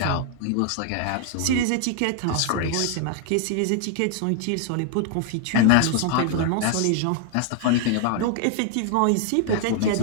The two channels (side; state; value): both; different; correlation 0.00